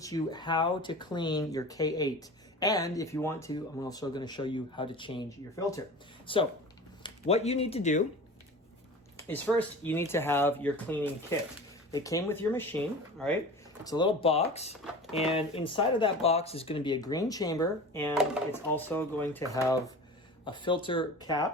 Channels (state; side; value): normal; both; correlation 0.36